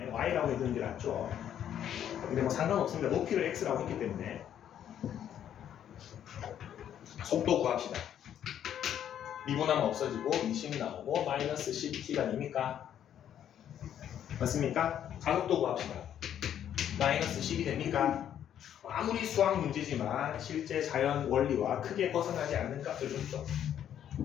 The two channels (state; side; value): quieter; right; 10.0 dB